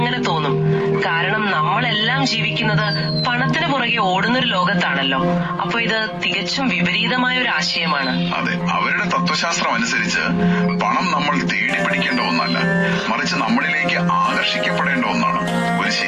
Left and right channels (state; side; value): identical; both; correlation 1.00